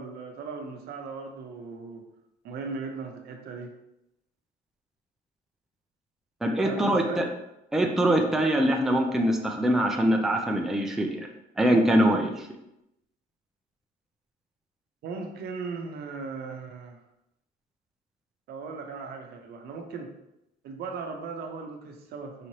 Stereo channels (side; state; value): both; normal; correlation 0.76